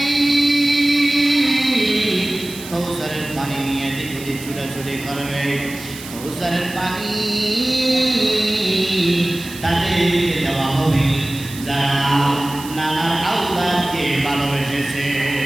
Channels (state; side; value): noise; right; hiss, 14 dB below the sound